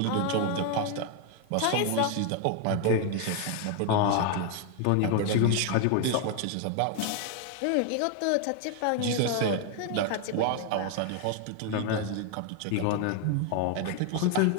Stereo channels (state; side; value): different; both; correlation 0.01